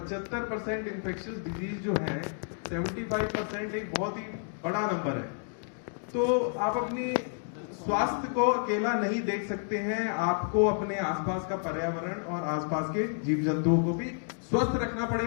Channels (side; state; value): right; silent; 58 dB below the other